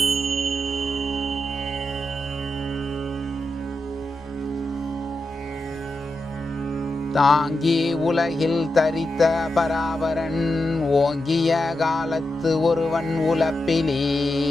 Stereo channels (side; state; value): both; normal; correlation 0.88